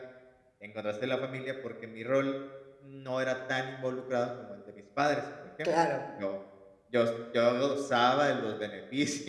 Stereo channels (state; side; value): identical; both; correlation 1.00